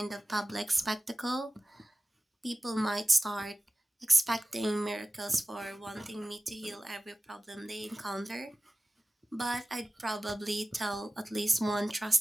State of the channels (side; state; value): both; normal; correlation 0.97